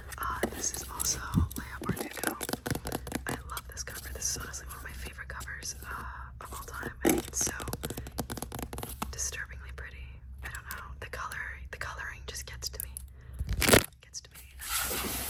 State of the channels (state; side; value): identical; both; correlation 1.00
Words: This is also Leo Bardugo. I love this cover. This is honestly one of my favorite covers of all time. I think it's so disturbingly pretty. I don't know. The coloring just gets to me.